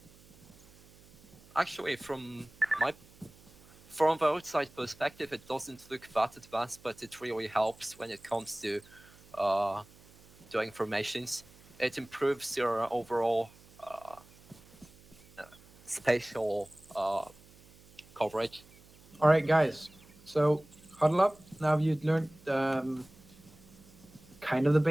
Actually, from the outside perspective, it doesn't look that advanced, but it really helps when it comes to doing formations. It improves your overall spatial coverage. All right, guys. So huddle up. Now you've learned kind of the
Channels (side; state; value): right; noise; hum, 25 dB below the sound